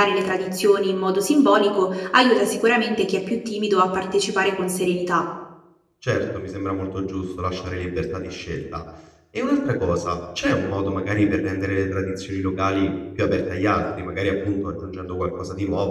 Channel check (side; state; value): both; identical; correlation 1.00